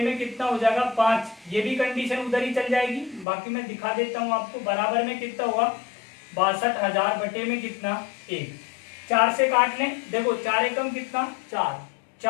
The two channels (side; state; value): right; drops out; at 3.2 s